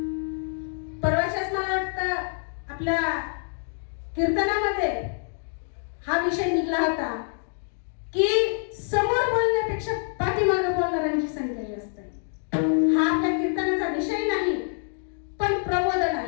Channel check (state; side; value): silent; right; 60 dB below the other